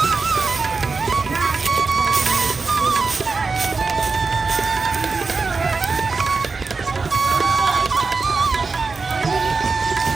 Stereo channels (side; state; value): left; quieter; 4.4 dB